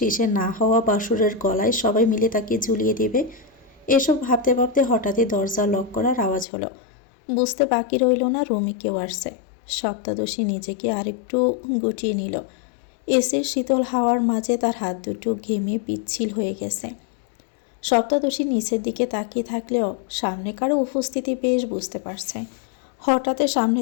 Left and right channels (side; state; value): right; drops out; at 6.5 s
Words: না হওয়া বাসুরের গলায় সবাই মিলে তাকে ঝুলিয়ে দেবে। এসব ভাবতে ভাবতে হঠাৎই দরজা লক করার আওয়াজ হলো। বুঝতে বাকি রইল না রুমে কেউ আসছে। সপ্তাদশী নিজেকে আরেকটু গুটিয়ে নিল। এসে শীতল হাওয়ার মাঝে তার হাত দুটো ঘেমে পিচ্ছিল হয়ে গেছে। সপ্তাদশী নিচের দিকে তাকিয়ে থাকলেও সামনে কারো উপস্থিতি বেশ বুঝতে পারছে। হঠাৎ সামনে